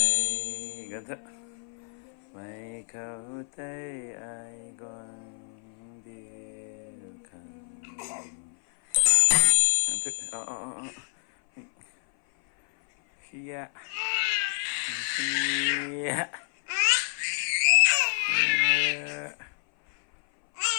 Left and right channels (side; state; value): right; silent; 56 dB below the other